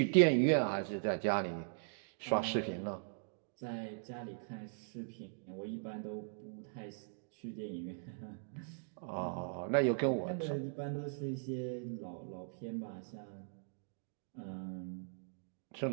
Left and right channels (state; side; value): silent; left; digital silence